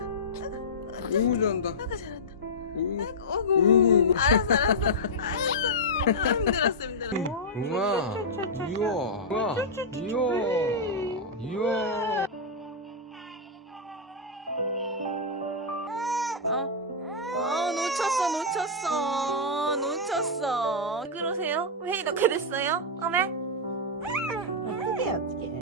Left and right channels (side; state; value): both; normal; correlation -0.09